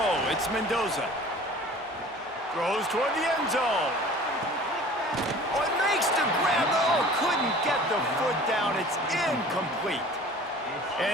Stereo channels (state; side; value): normal; both; correlation 0.45